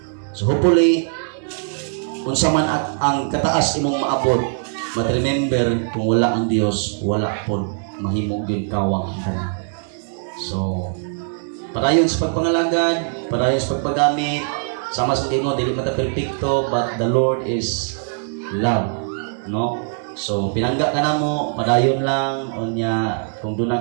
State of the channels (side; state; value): left; silent; digital silence